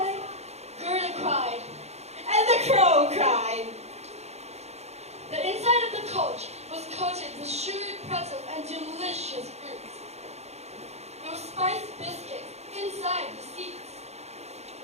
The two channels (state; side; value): late; left; 0.31 ms